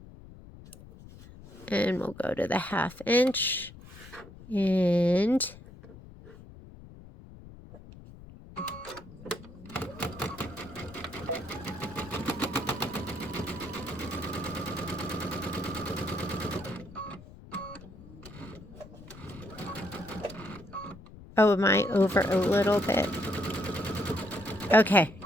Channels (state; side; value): noise; left; rumble, 18 dB below the sound